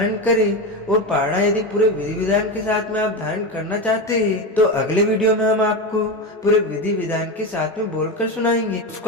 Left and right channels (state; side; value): normal; both; correlation 0.18